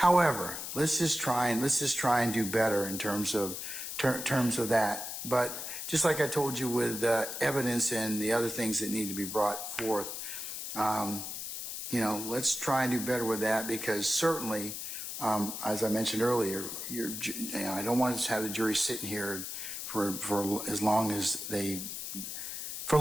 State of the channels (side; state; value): left; noise; hiss, 6 dB below the sound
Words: let's just try and do better in terms of that. But just like I told you with evidence and the other things that need to be brought forth, you know, let's try and do better with that, because certainly, as I mentioned earlier, I don't want to have the jury sitting here for as long as for